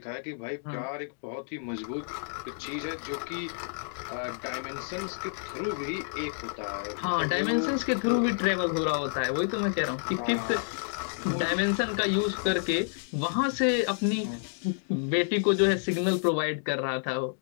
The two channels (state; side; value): silent; right; digital silence